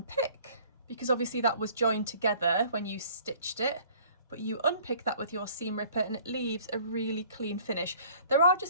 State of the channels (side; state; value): both; inverted; correlation -0.53